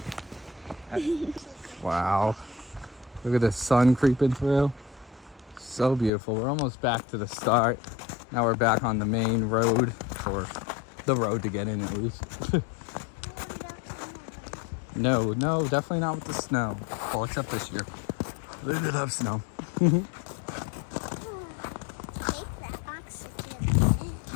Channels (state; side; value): drops out; right; at 6.1 s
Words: Wow. Look at the sun creeping through. So beautiful. We're almost back to the start. Now we're back on the main road, or the road to get in at least. No, definitely not with the snow. Well, except this year. We did have snow. I'll